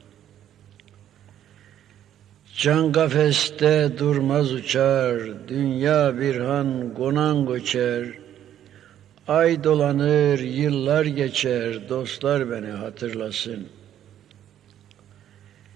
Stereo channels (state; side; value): quieter; left; 10.9 dB